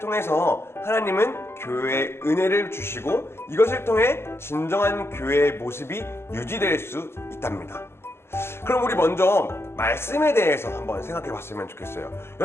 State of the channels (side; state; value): right; late; 0.12 ms